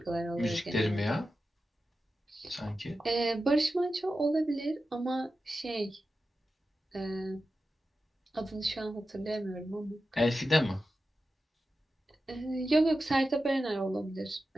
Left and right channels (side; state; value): both; normal; correlation 0.92